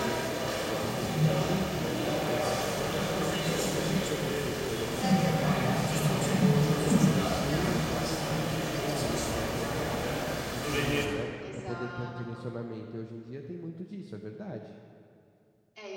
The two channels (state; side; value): identical; both; correlation 1.00